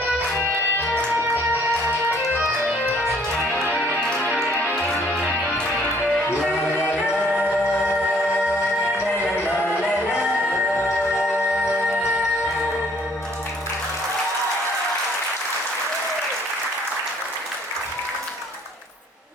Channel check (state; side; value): normal; both; correlation 0.61